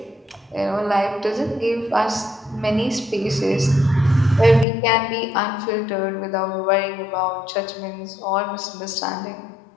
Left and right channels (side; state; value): right; drops out; at 4.7 s